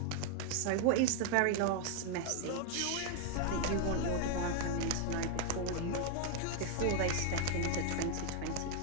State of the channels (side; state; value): both; different; correlation 0.00